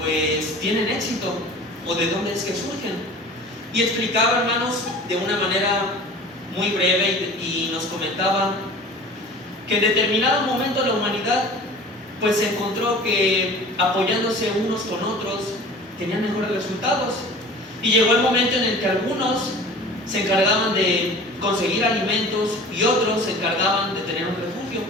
tienen éxito o de dónde es que surgen. Y explicaba, hermanos, de una manera muy breve y nos comentaba que en determinado momento la humanidad pues se encontró que apoyándose unos con otros tenían mejores resultados. Y llegó el momento en el que algunos se encargaban de conseguir alimentos y otros se encargaban de tener un refugio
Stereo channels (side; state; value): both; normal; correlation 0.41